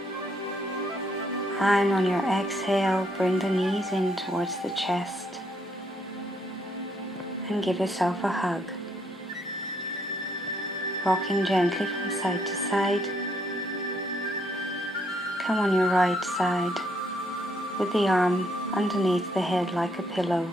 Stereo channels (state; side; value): normal; both; correlation 0.72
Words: And on your exhale, bring the knees in towards the chest and give yourself a hug. Rocking gently from side to side. Come on your right side with the arm underneath the head like a pillow.